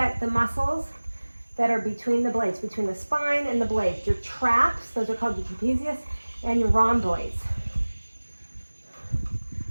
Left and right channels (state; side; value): inverted; both; correlation -1.00